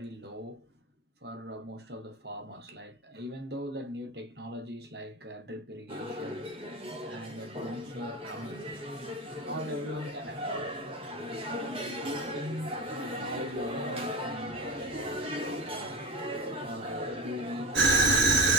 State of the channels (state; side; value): normal; both; correlation 0.26